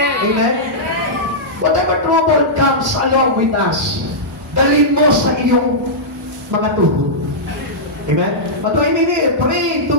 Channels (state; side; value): normal; both; correlation -0.12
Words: Amen? Whatever trouble comes along with us, dalhin mo sa iyong mga tuhod. Amen? But why we need? Pray to